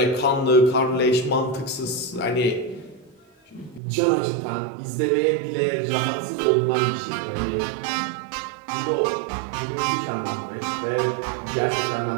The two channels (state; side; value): drops out; left; at 3.8 s